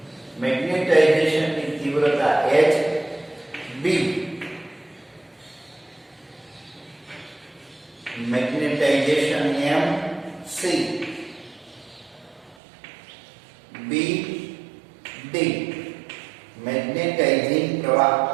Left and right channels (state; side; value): drops out; left; at 12.6 s